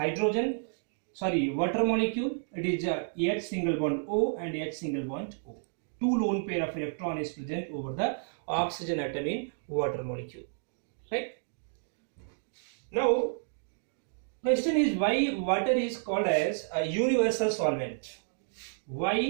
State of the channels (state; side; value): silent; left; digital silence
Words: molecule, it is H single bond O and H single bond O. Two lone pair of electron is present over the oxygen atom in water molecule, right? Now, question is why water is called as a universal solvent.